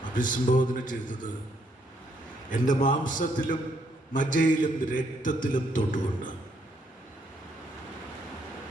അഭിസംബോധന ചെയ്തത് എൻ്റെ മാംസത്തിലും മജ്ജയിലും രക്തത്തിലും തൊട്ടുകൊണ്ട്.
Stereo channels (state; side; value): normal; both; correlation 0.72